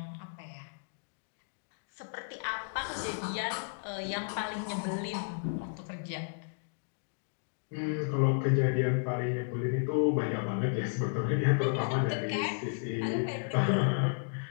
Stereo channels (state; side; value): silent; right; digital silence